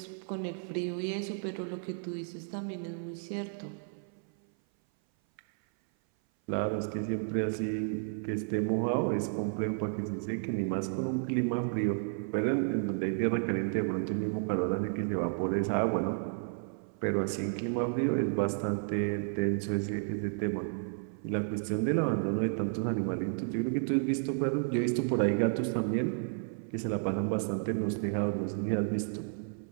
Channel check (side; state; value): left; silent; 56 dB below the other